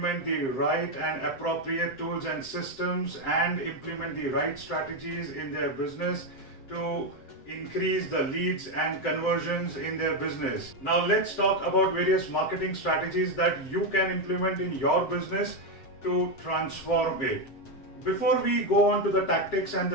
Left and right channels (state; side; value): late; right; 7.6 ms